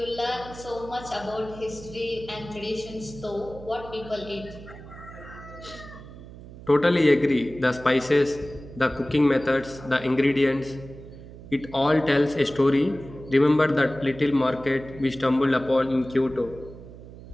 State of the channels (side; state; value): right; noise; hum, 16 dB below the sound